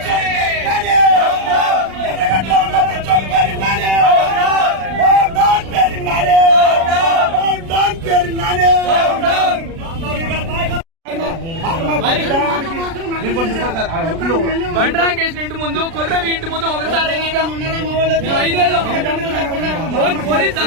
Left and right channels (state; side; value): late; left; 36 ms